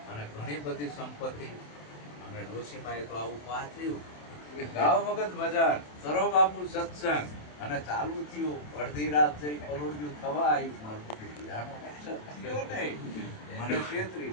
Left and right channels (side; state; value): right; late; 27 ms